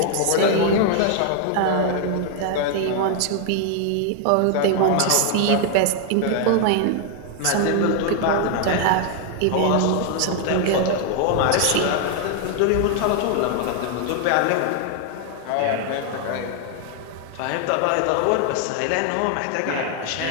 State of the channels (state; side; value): different; both; correlation 0.00